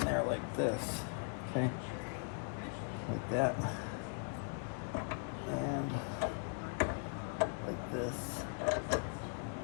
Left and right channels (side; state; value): right; silent; 51 dB below the other